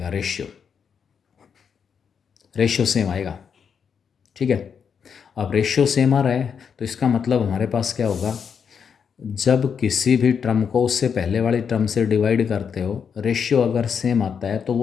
रेशियो सेम आएगा। ठीक है। अब रेशियो सेम आ रहा है तो इसका मतलब हमारे पास क्या होगा, जब किसी भी टर्म को उससे पहले वाली टर्म से डिवाइड करते हो रेशियो अगर सेम आता है तो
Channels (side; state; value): right; quieter; 6.9 dB